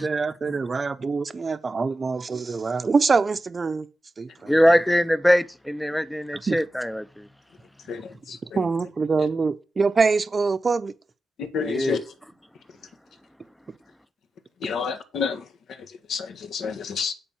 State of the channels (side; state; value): both; normal; correlation 0.92